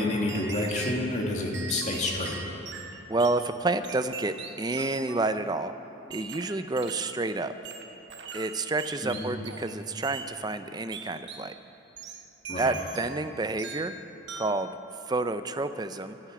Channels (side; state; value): both; normal; correlation 0.39